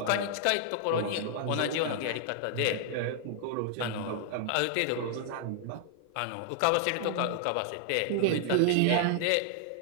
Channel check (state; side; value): different; both; correlation -0.01